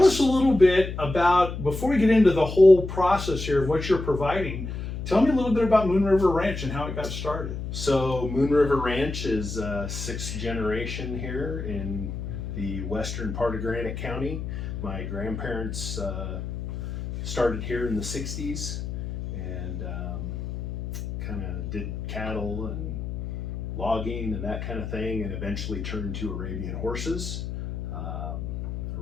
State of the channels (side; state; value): left; noise; hum, 6 dB below the sound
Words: us a little bit about, before we get into the whole process here of what you're providing, tell me a little bit about Moon River Ranch and how it got started. So Moon River Ranch is sixth generation here in the western part of Granite County. My grandparents started here in the 60s and kind of did cattle and logging and that kind of thing, and eventually turned to Arabian horses.